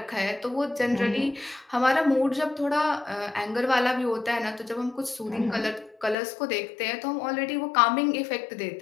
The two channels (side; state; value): right; drops out; at 6.2 s